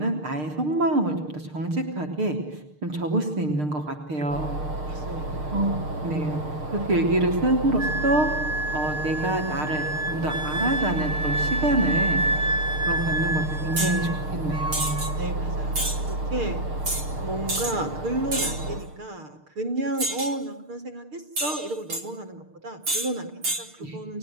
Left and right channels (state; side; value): late; left; 6.6 ms